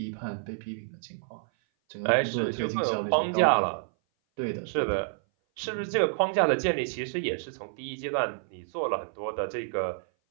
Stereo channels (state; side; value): silent; left; 57 dB below the other